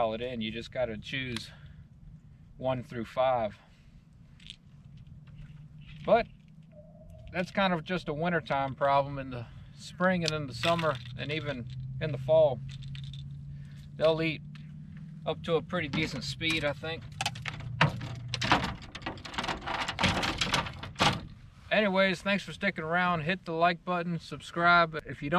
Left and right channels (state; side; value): identical; both; correlation 1.00